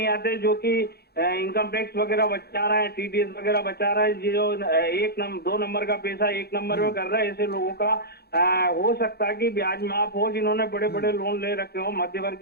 आते, जो कि इनकम टैक्स वगैरह बचा रहे हैं, टीडीएस वगैरह बचा रहे हैं, जो 2 नंबर का पैसा 1 नंबर में कर रहा है, ऐसे लोगों का हो सकता है कि ब्याज माफ हो, जिन्होंने बड़े बड़े लोन ले रखे हो।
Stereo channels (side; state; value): right; late; 0.46 ms